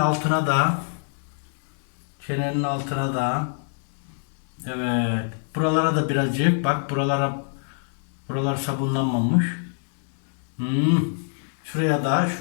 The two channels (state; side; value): silent; right; digital silence